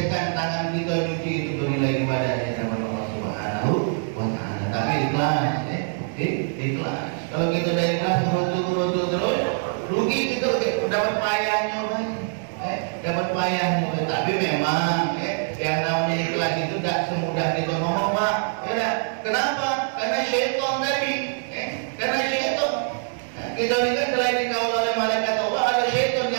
tangan kita nyuci itu bernilai ibadah di hadapan Allah Subhanahu wa taala. Tapi ikhlas, ikhlas. Kalau kita udah ikhlas berutuh terus, rugi kita dapat payahnya banyak. Dapat payahnya. Tapi memang yang namanya ikhlas itu tidak semudah kita ngomong, Pak. Ya, kenapa? Karena syaitan tadi. Karena syaitan. Kita ini kan selain dikawal oleh malaikat Allah, ada syaitan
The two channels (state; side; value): silent; left; 62 dB below the other